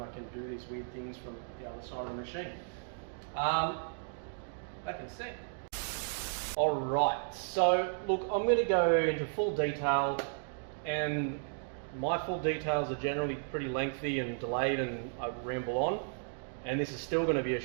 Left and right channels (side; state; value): left; silent; digital silence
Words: can do these weird things from the other side of the machine. Back in a sec. Alright, so look, I'm going to go into full detail, and my full details are generally pretty lengthy and delayed and I ramble on, and this is still going to be a